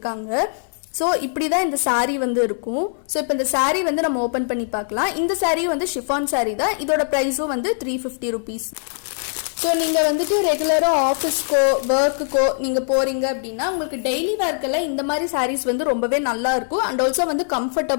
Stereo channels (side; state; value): right; silent; 65 dB below the other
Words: ஸோ இப்படி தான் இந்த சாரீ வந்து இருக்கும். ஸோ இப்போ இந்த சாரீ வந்து நம்ம ஓப்பன் பண்ணி பார்க்கலாம். இந்த சாரீ வந்து ஷிஃபான் சாரீ தான். இதோட ப்ரைஸும் வந்து 350 rupees. ஸோ நீங்கள் வந்துட்டு ரெகுலராக ஆஃபீஸ்க்கோ ஒர்க்குக்கோ நீங்கள் போகிறீங்க அப்படின்னா உங்களுக்கு டெய்லி ஒர்க்கெல்லாம் இந்த மாதிரி சாரீஸ் வந்து ரொம்பவே நல்லா இருக்கும். அண்ட் ஆல்சோ வந்து